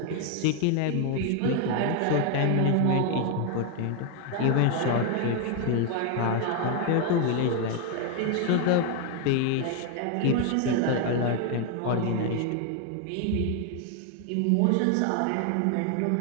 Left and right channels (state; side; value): different; both; correlation 0.01